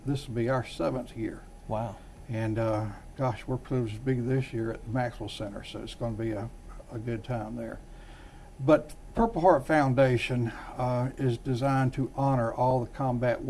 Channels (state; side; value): identical; both; correlation 1.00